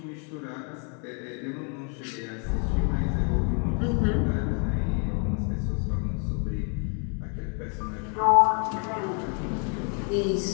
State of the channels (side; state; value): right; quieter; 39.7 dB